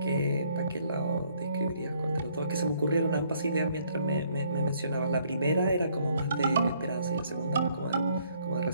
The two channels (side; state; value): both; inverted; correlation -0.65